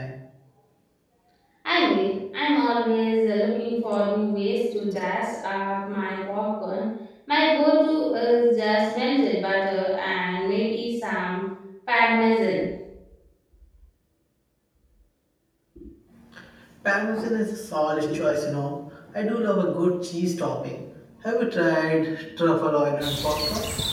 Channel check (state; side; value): identical; both; correlation 1.00